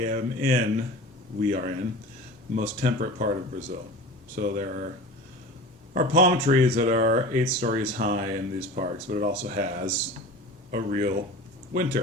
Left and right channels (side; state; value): both; normal; correlation 0.35